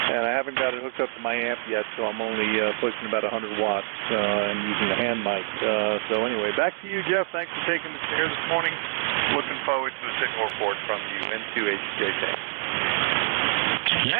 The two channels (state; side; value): silent; left; 61 dB below the other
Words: and I haven't got it hooked up to my amp yet, so I'm only pushing about 100 watts and using the hand mic. So anyway, back to you, Jeff. Thanks for taking the chair this morning. Looking forward to a signal report from you, N2HJK.